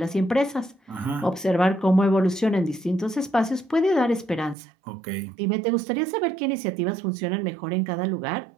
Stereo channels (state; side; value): drops out; left; at 4.5 s